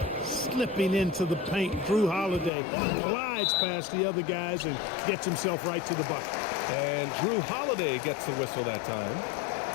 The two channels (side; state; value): right; drops out; at 2.5 s